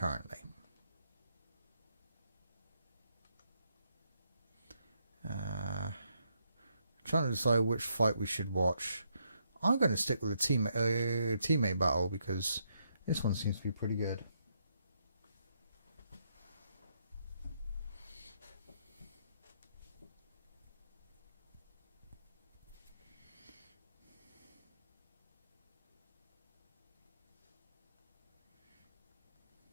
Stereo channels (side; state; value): both; inverted; correlation -0.77